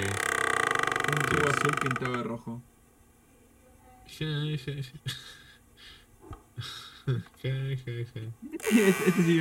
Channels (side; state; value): both; identical; correlation 1.00